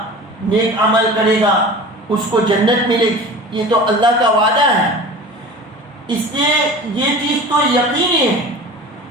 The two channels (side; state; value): both; normal; correlation 0.38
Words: نیک عمل کرے گا، اس کو جنت ملے گی. یہ تو اللہ کا وعدہ ہے، اس لیے یہ چیز تو یقینی ہے.